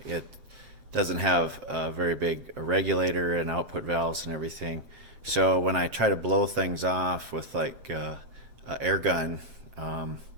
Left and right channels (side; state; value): left; late; 7.6 ms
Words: It doesn't have a very big regulator and output valves and everything. So when I try to blow things off with like an air gun,